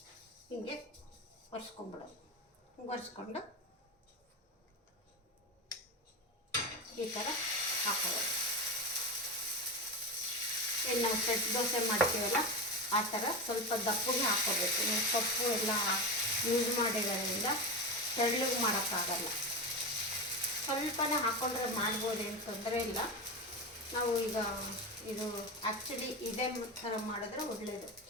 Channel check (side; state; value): both; normal; correlation 0.19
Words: ಹಿಂಗೆ ಒರೆಸ್ಕೊಂಡ್ಬಿಡೋದು. ಒರೆಸ್ಕೊಂಡು ಈ ಥರ ಹಾಕೋದು. ಏನು ನಾವು ಸೆಟ್ ದೋಸೆ ಮಾಡ್ತೀವಲ್ಲ ಆ ಥರ ಸ್ವಲ್ಪ ದಪ್ಪಗೆ ಹಾಕೋಬೇಕು. ನೀವು ಸೊಪ್ಪು ಎಲ್ಲ ಯೂಸ್ ಮಾಡಿರೋದ್ರಿಂದ ತೆಳ್ಳಗೆ ಮಾಡೋಕ್ಕಾಗಲ್ಲ. ಸ್ವಲ್ಪನೇ ಹಾಕ್ಕೊಂಡ್ರೆ ಮಾಡ್ಬೋದು, ಏನು ತೊಂದರೆ ಇಲ್ಲ. ನಾವು ಈಗ ಇದು ಆ್ಯಕ್ಚುಲಿ ಇದೇ ಥರ ಮಾಡಿದ್ರೆ ಒಳ್ಳೆಯದು,